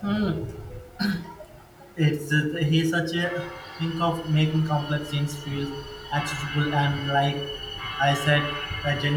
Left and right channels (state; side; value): identical; both; correlation 1.00